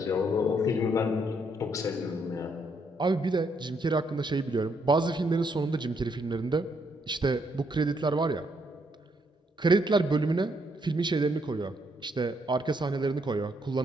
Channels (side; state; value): both; normal; correlation 0.74